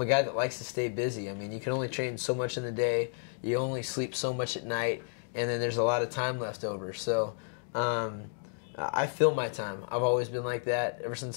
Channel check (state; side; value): silent; right; digital silence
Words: a guy that likes to stay busy. I mean, you can only train so much in the day. You only sleep so much at night, and then there's a lot of time left over. So I fill my time. I've always been like that. Ever